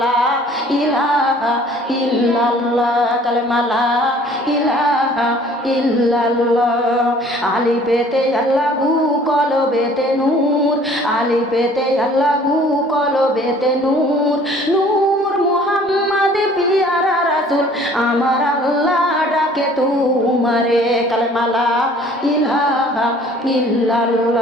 লা ইলাহা ইল্লাল্লাহ কালেমা লা ইলাহা ইল্লাল্লাহ। আলিফেতে আল্লাহু কলবেতে নূর, আলিফেতে আল্লাহু কলবেতে নূর নূর মোহাম্মদ পিয়ারা রাসূল আমার আল্লাহ ডাকে তোমারে কালেমা লা ইলাহা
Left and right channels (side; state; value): both; normal; correlation 0.53